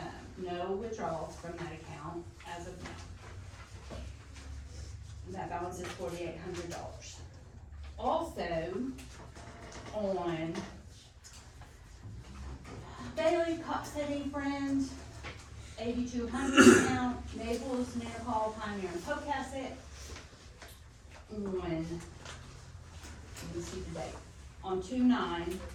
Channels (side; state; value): both; identical; correlation 1.00